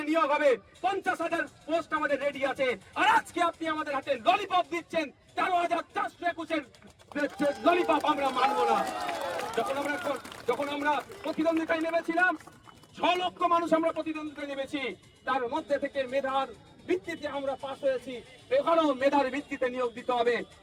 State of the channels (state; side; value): identical; both; correlation 1.00